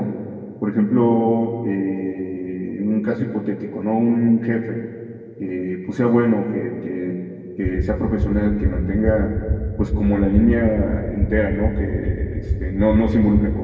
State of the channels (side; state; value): both; identical; correlation 1.00